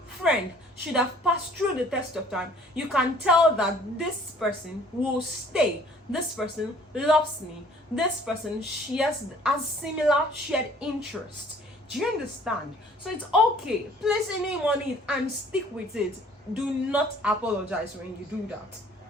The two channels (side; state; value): both; normal; correlation 0.55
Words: friend, should have passed through the test of time. You can tell that this person will stay. This person loves me. This person shares a similar shared interest. Do you understand? So it's okay. Place a name on it and stick with it. Do not apologize when you do that.